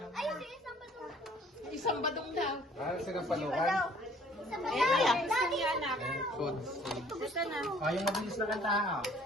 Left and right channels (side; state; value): both; normal; correlation 0.56